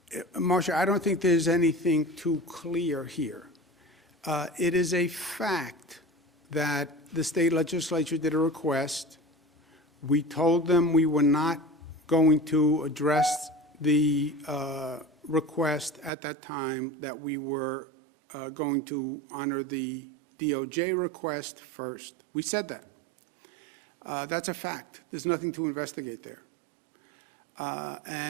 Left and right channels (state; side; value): drops out; left; at 16.1 s